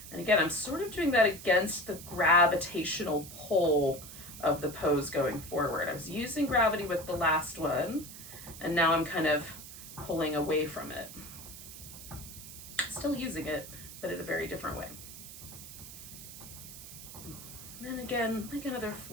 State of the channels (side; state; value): right; noise; hiss, 13 dB below the sound